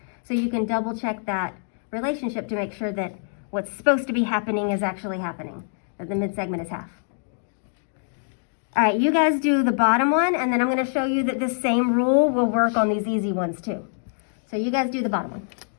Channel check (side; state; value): right; silent; digital silence